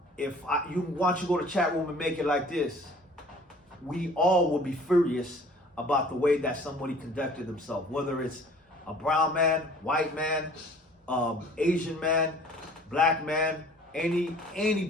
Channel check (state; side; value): normal; both; correlation 0.50